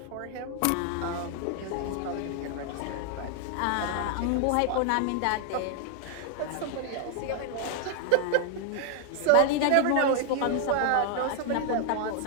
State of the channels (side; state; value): both; different; correlation 0.00